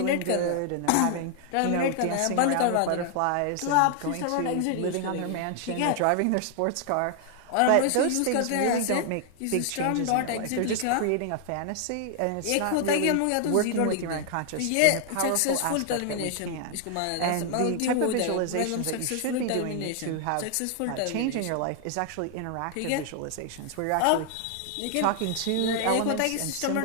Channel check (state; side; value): different; both; correlation 0.00